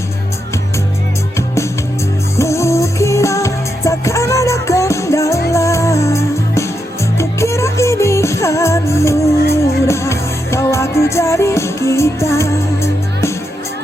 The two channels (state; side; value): normal; both; correlation 0.84